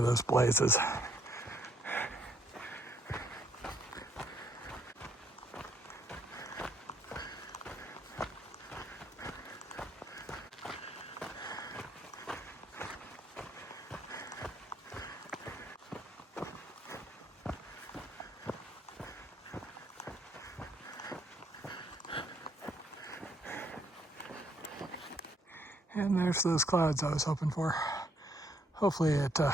those blazes. And there's those clouds I was hoping for. Hopefully it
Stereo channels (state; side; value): normal; both; correlation 0.69